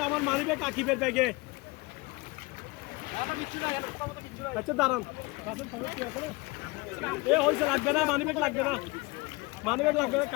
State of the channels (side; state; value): right; quieter; 24.8 dB